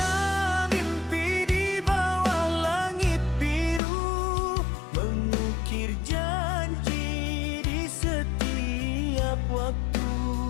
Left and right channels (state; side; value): drops out; right; at 3.8 s